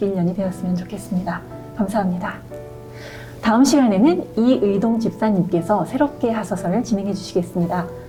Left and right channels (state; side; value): identical; both; correlation 1.00